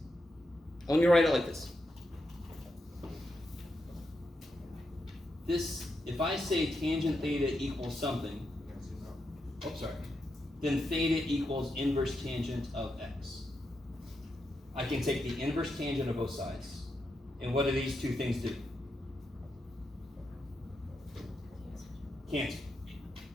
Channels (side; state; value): both; normal; correlation 0.85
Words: Let me write it like this. This, if I say tangent theta equals something, oh, sorry, then theta equals inverse tangent of x. I can take the inverse tangent of both sides, and what do these two things do? Cancel.